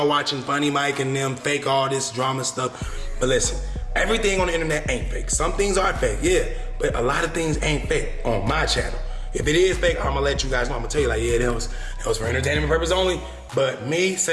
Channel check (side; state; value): both; identical; correlation 1.00